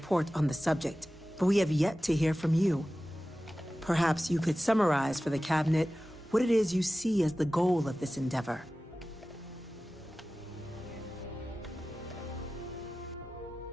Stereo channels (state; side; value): normal; both; correlation 0.96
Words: on the subject, but we have yet to hear from you. Perhaps you could summarize for the Cabinet what it is you see as the goal of this endeavor.